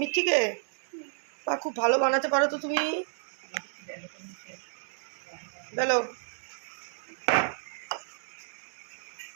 থেকে? বা খুব ভালো বানাতে পারো তো তুমি। বলো।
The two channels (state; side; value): silent; left; digital silence